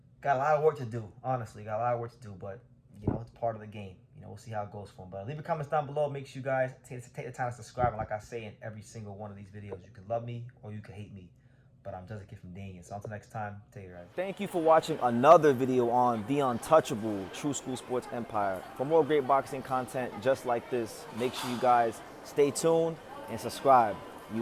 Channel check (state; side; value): identical; both; correlation 1.00